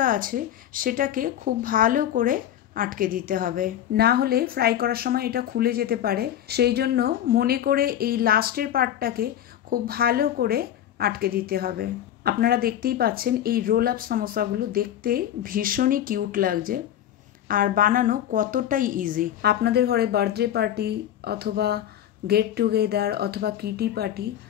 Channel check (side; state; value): right; quieter; 11.2 dB